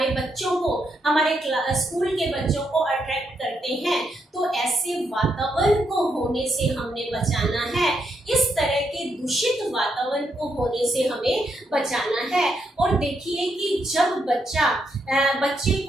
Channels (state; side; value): normal; both; correlation 0.79